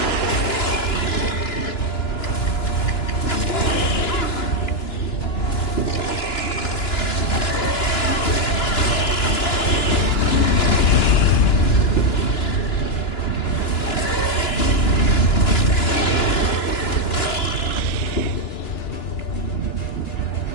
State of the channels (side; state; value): right; late; 2.9 ms